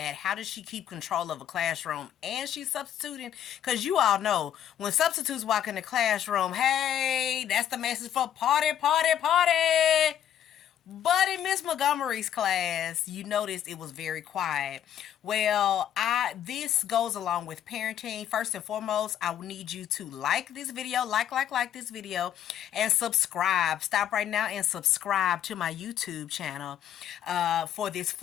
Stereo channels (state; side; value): quieter; right; 10.3 dB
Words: How does she keep control of a classroom? And she's substituting, because you all know when substitutes walk in the classroom, hey, that's the message for party, party, party. But in Miss Montgomery's class, you noticed it was very quiet. Well, I this goes along with parenting. First and foremost, I need you to like this video, like this video, and subscribe. Stop right now and subscribe to my YouTube channel for this